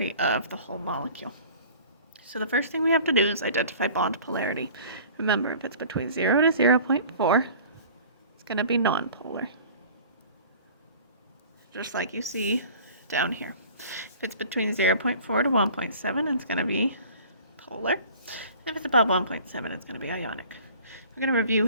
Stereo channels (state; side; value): inverted; both; correlation -0.46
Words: of the whole molecule. So the first thing we have to do is identify bond polarity. Remember, if it's between 0 to 0.4, it's going to be nonpolar, just like you see down here. If it's between 0.4 to 1.7, it's going to be polar. And if it's above 1.7, it's going to be ionic. We're going to review